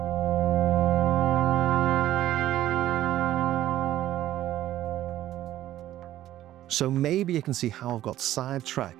So maybe you can see how I've got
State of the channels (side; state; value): left; quieter; 13.5 dB